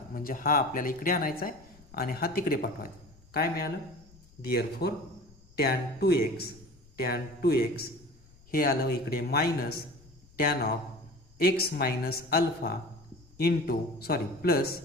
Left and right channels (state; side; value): noise; left; rumble, 26 dB below the sound